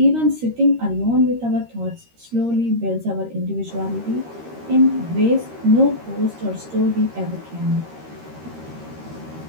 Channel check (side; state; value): left; late; 13 ms